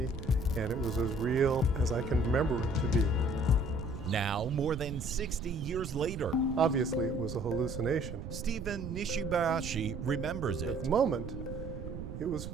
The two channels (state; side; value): noise; right; rumble, 8 dB below the sound